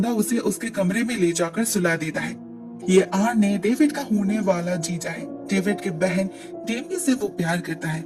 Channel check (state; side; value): identical; both; correlation 1.00